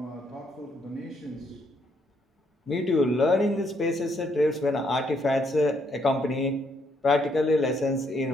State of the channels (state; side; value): normal; both; correlation 0.72